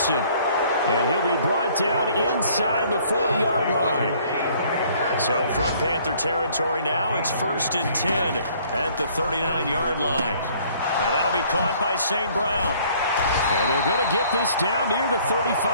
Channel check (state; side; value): inverted; both; correlation -0.58